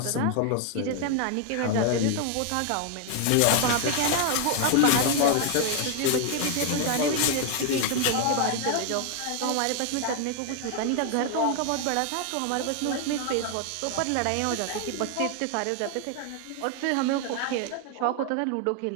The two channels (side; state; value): both; different; correlation 0.00